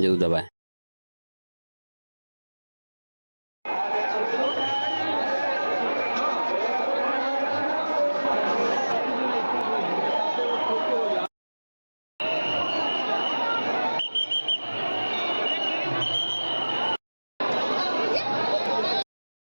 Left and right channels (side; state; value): both; inverted; correlation -1.00